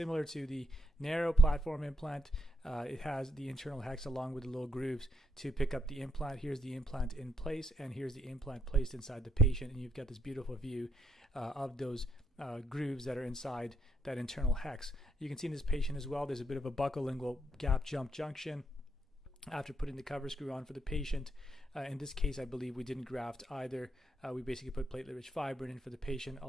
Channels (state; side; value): normal; both; correlation 0.76